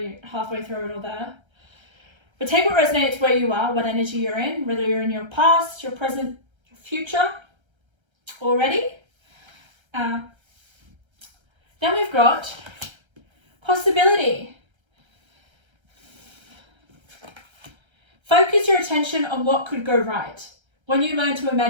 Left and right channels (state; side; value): late; left; 1.3 ms